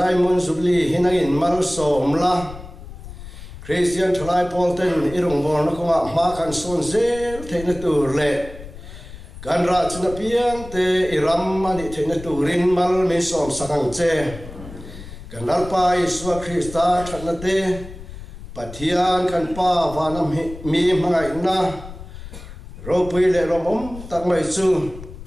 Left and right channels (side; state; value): left; noise; rumble, 14 dB below the sound